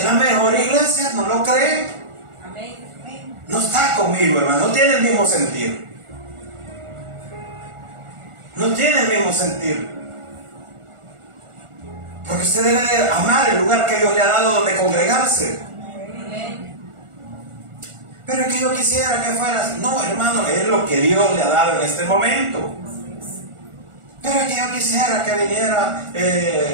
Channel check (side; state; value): left; late; 1.4 ms